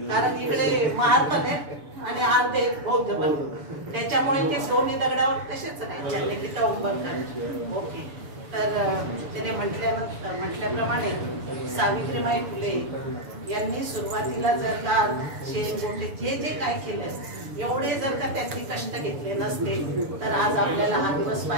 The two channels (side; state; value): left; late; 6.9 ms